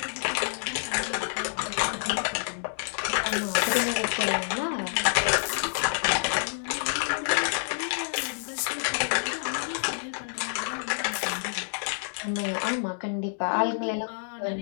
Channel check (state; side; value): silent; right; digital silence